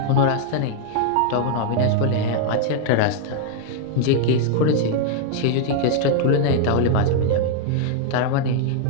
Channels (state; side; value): different; both; correlation 0.00